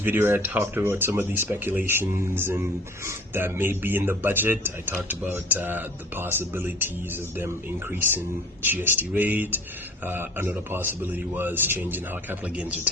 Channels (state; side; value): normal; both; correlation 0.47